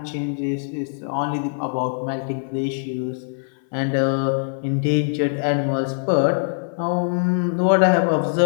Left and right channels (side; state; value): right; silent; 58 dB below the other